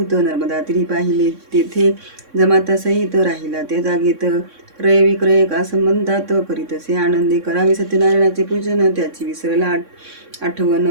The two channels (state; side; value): late; left; 3.6 ms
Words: नर्मदा तीरी पाहिले. तेथे जमाता सहित राहिला त्या जागेत. क्रय विक्रय का संबंधात करीतसे आनंदे. करावे सत्यनारायणाचे पूजन, त्याची विसरला आठवण.